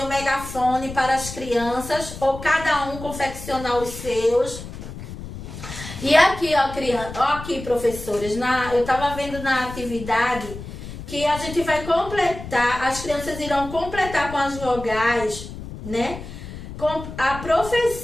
megafone para as crianças, ou cada um confeccionar os seus. E aqui, ó, criança, ó, aqui, professores, eu estava vendo na atividade que a gente vai completar, as crianças irão completar com as vogais, né? Com a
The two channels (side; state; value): left; noise; rumble, 11 dB below the sound